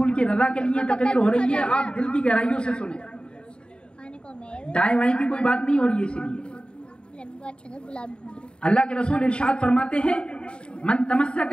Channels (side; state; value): right; late; 0.052 ms